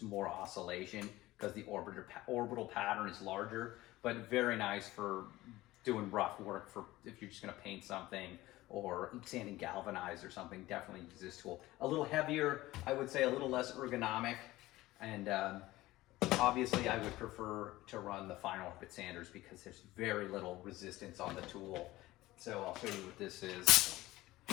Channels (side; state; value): right; quieter; 17.7 dB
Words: more oscillation because the orbital pattern is larger, but very nice for doing rough work, for if you're just gonna paint something or sanding galvanized or something. Definitely use this tool. A little heavier, I would say, a little less ergonomic, and obviously I would prefer to run the fine orbit sanders because there's very little resistance on the tool. So I'll show you what this is.